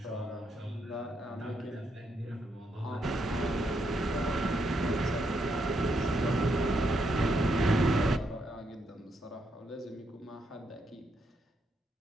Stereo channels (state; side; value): normal; both; correlation 0.79